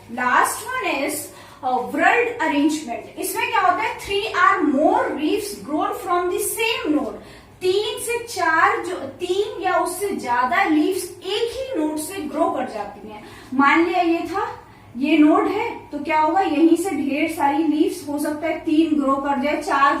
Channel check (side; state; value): both; identical; correlation 1.00